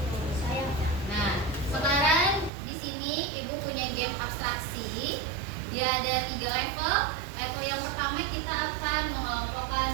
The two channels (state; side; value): drops out; left; at 2.5 s